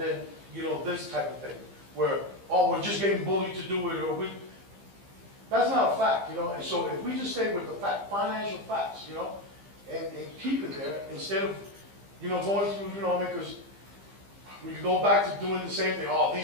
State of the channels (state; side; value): late; left; 15 ms